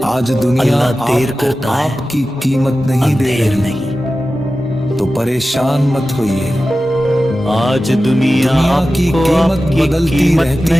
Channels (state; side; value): normal; both; correlation 0.94